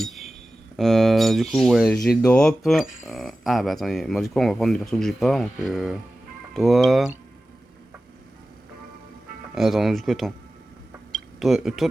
Du coup ouais j'ai drop. Ah bah attendez, moi du coup on va prendre des persos que j'ai pas donc toi... Attends, du coup, attends. Toi, toi,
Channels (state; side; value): normal; both; correlation 0.95